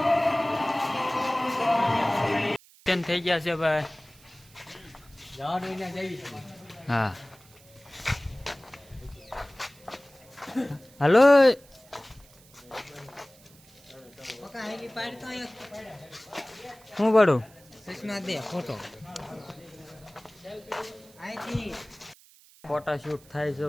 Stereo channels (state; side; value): noise; right; hiss, 25 dB below the sound